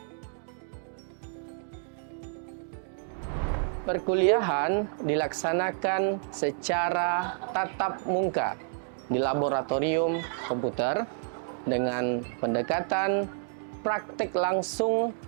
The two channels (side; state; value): left; silent; digital silence